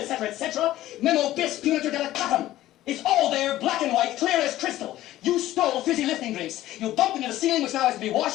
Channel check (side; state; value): right; quieter; 14.8 dB